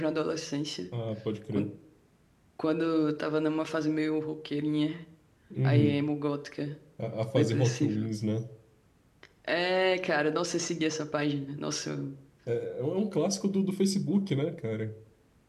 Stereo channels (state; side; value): identical; both; correlation 1.00